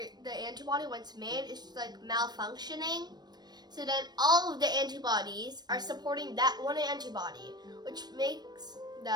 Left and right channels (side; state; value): left; late; 0.20 ms